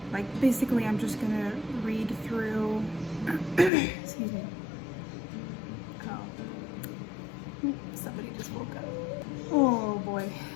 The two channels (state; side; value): drops out; right; at 3.7 s